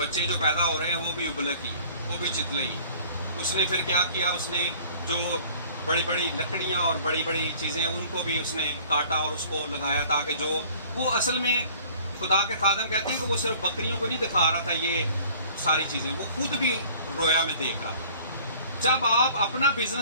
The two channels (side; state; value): both; inverted; correlation -0.51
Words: جو پیدا ہو رہے ہیں وہ بھی ابلک ہی ہیں. وہ بھی چتلئی. اس نے پھر کیا کیا, اس نے جو بڑی بڑی لکڑیاں اور بڑی بڑی چیزیں ان کو بھی اس نے کاٹا اور اس کو لگایا, تاکہ جو وہ اصل میں خدا کے خادم کہتے ہیں کہ وہ صرف بکریوں کو نہیں دکھا رہا تھا یہ ساری چیزیں, وہ خود بھی رویا میں دیکھ رہا تھا. جب آپ اپنا